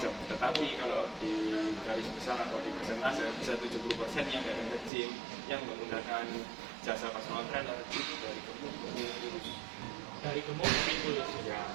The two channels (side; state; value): left; drops out; at 4.9 s